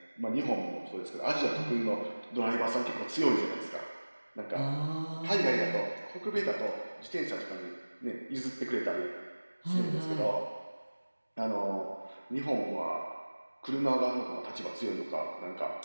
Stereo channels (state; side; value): inverted; both; correlation -1.00